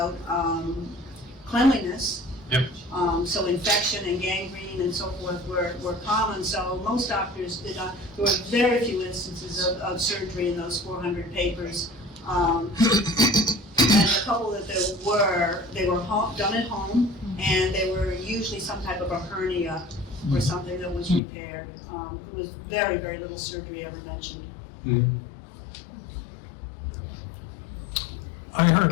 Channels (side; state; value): right; drops out; at 21.2 s